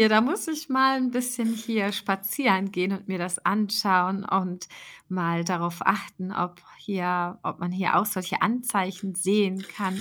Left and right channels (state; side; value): identical; both; correlation 1.00